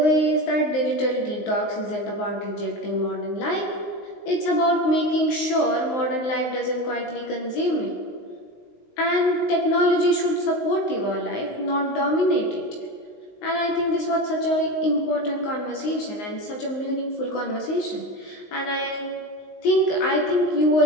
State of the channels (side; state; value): right; late; 19 ms